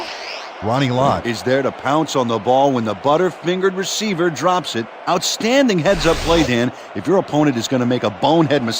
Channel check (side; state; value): both; identical; correlation 1.00